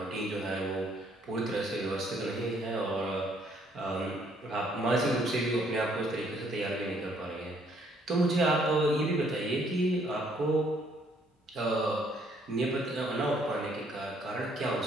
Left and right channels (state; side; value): normal; both; correlation 0.66